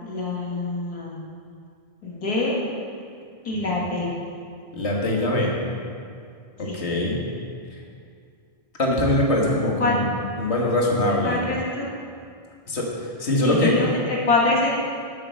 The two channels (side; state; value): right; late; 1.6 ms